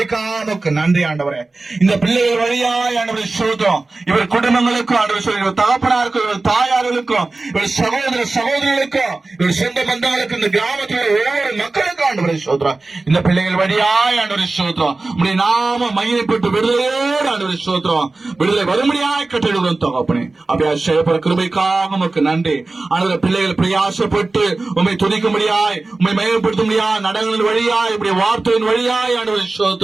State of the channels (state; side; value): quieter; left; 3.4 dB